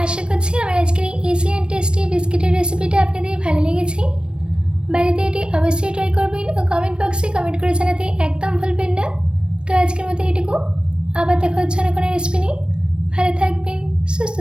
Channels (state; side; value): late; left; 0.056 ms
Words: আশা করছি আমার আজকের এই ইজি অ্যান্ড টেস্টি বিস্কিটের রেসিপিটা আপনাদের ভালো লেগেছে। বাড়িতে এটি অবশ্যই ট্রাই করবেন ও কমেন্ট বক্সে কমেন্ট করে জানাতে একদম ভুলবেন না। তো আজকের মতো এটুকু, আবার দেখা হচ্ছে না কোনো রেসিপি নিয়ে। ভালো থাকবেন, সুস্থ